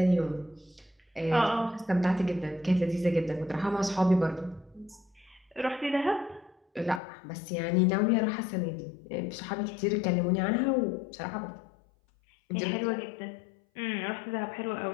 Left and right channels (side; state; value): right; drops out; at 7.0 s